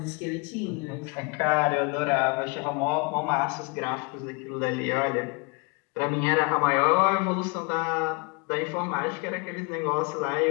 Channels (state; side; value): quieter; right; 30.2 dB